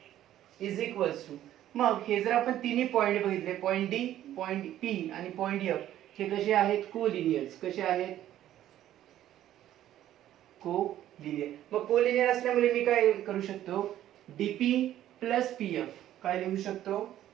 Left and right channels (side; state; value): left; quieter; 12.5 dB